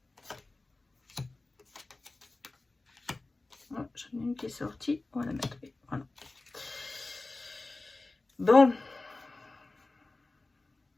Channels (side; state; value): right; quieter; 3.2 dB